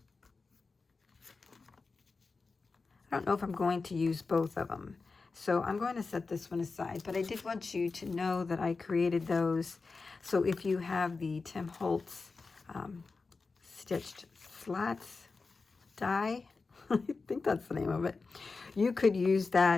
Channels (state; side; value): quieter; right; 4.2 dB